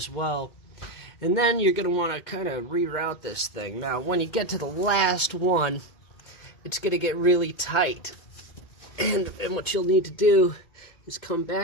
well. And then you're going to want to kind of reroute this thing. Now, when you get to the last one, it's going to get really tight. And what you'll need to do is come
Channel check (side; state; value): right; late; 2.1 ms